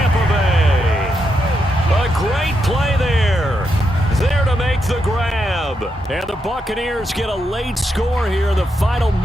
Bay. A great play there. There to make the grab. And the Buccaneers get a late score here in the final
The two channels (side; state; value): both; normal; correlation 0.83